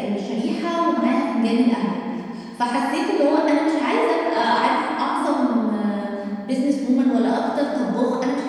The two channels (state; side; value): identical; both; correlation 1.00